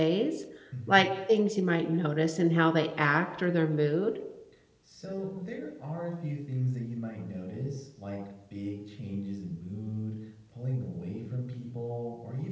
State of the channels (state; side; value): identical; both; correlation 1.00